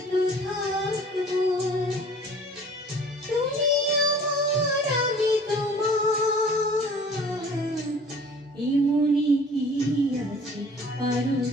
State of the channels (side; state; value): both; normal; correlation 0.49